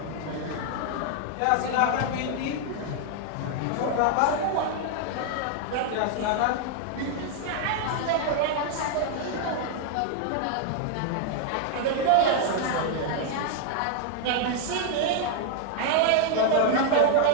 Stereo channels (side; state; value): both; different; correlation 0.00